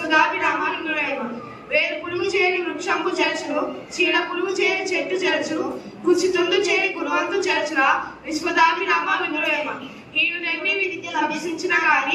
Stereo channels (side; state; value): both; identical; correlation 1.00